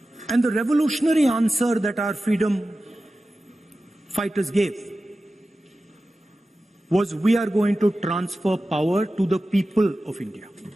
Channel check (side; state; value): both; normal; correlation 0.94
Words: And the revolutionary answer that our freedom fighters gave was, we are going to transfer power to the people of India.